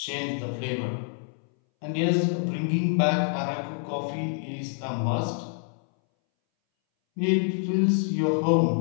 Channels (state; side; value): silent; right; 60 dB below the other